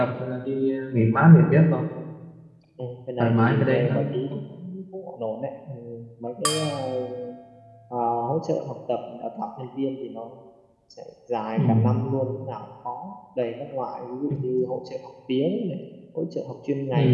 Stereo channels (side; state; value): both; identical; correlation 1.00